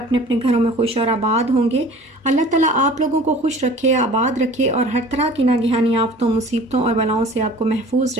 अपने घरों में खुश और आबाद होंगे। अल्लाह ताला आप लोगों को खुश रखे, आबाद रखे और हर तरह की नागहानी आफतों, मुसीबतों और बलाओं से आपको महफूज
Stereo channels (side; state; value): both; normal; correlation 0.45